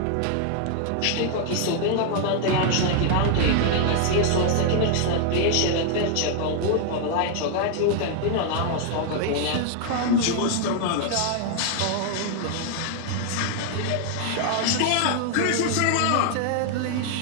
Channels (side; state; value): both; different; correlation 0.00